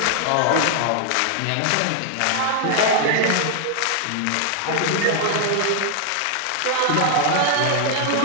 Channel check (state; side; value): different; both; correlation 0.00